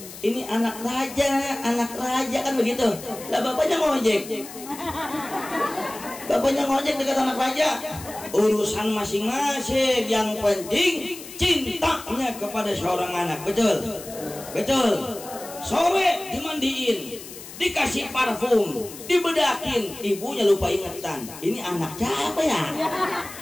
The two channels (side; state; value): left; noise; hiss, 14 dB below the sound